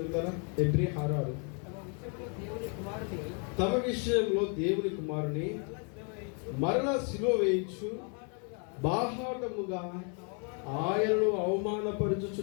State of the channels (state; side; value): quieter; right; 39.1 dB